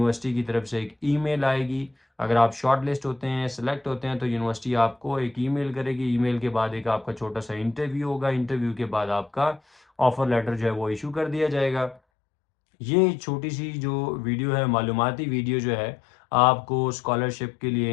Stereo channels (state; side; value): drops out; right; at 12.0 s